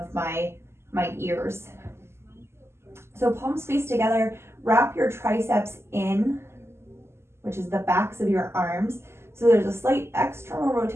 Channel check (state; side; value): late; left; 0.12 ms